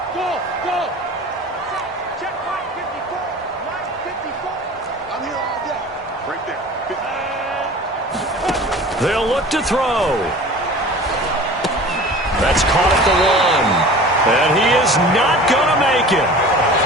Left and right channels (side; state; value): both; normal; correlation 0.41